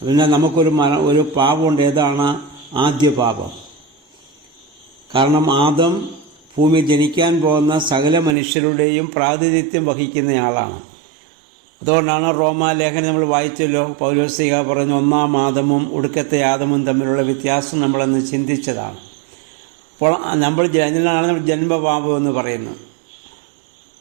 പിന്നെ നമുക്കൊരു പാപമുണ്ട്. ഏതാണ്? ആദ്യ പാപം. കാരണം ആദം ഭൂമിയിൽ ജനിക്കാൻ പോകുന്ന സകല മനുഷ്യരുടെയും പ്രാതിനിധ്യം വഹിക്കുന്നയാളാണ്. അതുകൊണ്ടാണ് റോമാലേഖനം നമ്മൾ വായിച്ചല്ലോ, പൗലോസ്ലീഹ പറയുന്ന ഒന്നാം ആദമും ഒടുക്കത്തെ ആദമും തമ്മിലുള്ള വ്യത്യാസം നമ്മളന്ന് ചിന്തിച്ചതാണ്. അപ്പോൾ അതിനാണ് നമ്മൾ ജന്മപാപം എന്ന് പറയുന്നത്.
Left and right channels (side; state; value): left; drops out; at 8.3 s